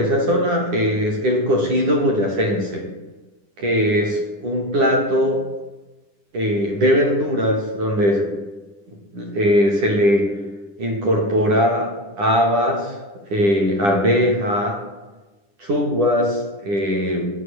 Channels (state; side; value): late; left; 10 ms